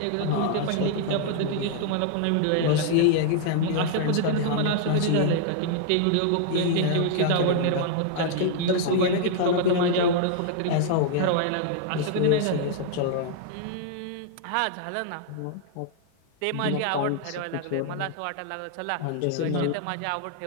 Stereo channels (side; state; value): both; different; correlation -0.01